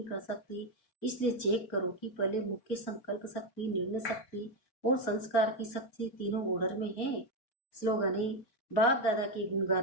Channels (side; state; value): right; late; 3.9 ms